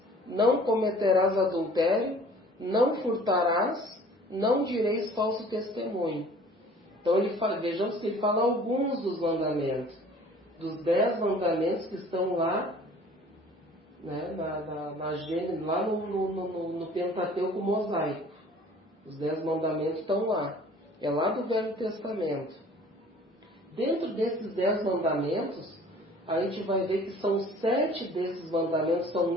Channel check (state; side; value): normal; both; correlation 0.50